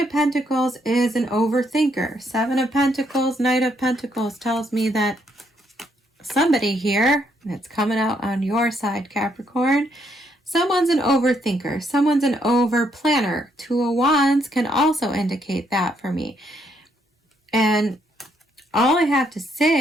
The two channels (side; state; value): both; normal; correlation 0.73